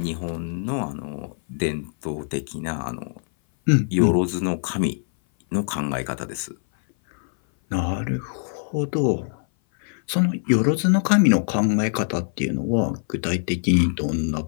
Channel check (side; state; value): right; silent; 58 dB below the other